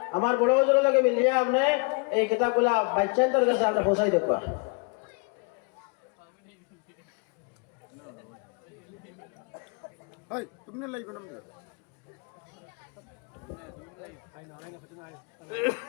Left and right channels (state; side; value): quieter; right; 33.4 dB